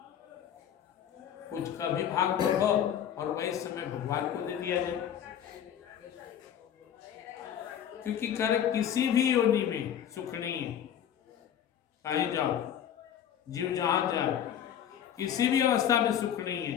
कुछ कभी भाग बढ़ो और वही समय भगवान को दे दिया जाए। क्योंकि कर किसी भी योनि में सुख नहीं है, कहीं जाओ, जीव जहां जाए, किसी भी अवस्था में सुख नहीं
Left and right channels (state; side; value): quieter; right; 9.6 dB